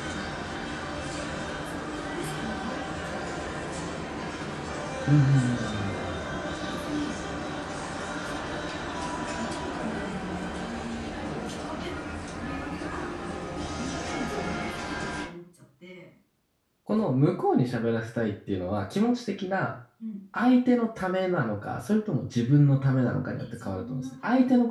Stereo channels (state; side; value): identical; both; correlation 1.00